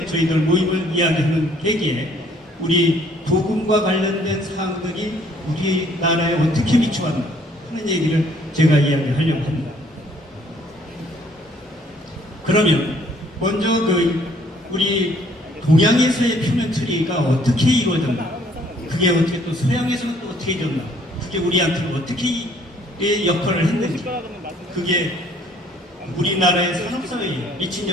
저희들 모임을 이야기하는 계기에 우리 복음과 관련된 사항들이 우리나라에 어떻게 미쳐왔나 하는 얘기를 제가 이야기하려고 합니다. 그러면 먼저 우리 동양에서의 표면 처리가 어떻게 이루어졌나, 그게 어떻게 또 서양에서는 또 어떻게 되었나, 그게 우리한테 어떻게 역할을 했는지, 그게 우리나라의 산업사회에 미친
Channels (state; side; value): normal; both; correlation 0.61